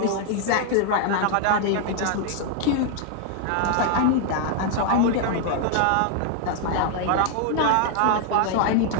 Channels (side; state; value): both; different; correlation 0.00